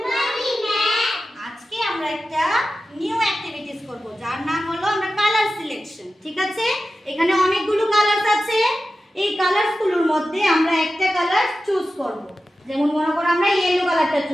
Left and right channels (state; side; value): normal; both; correlation 0.94